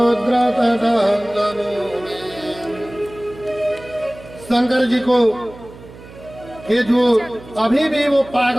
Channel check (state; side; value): noise; right; hum, 19 dB below the sound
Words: शंकर जी को कि जो अभी भी वो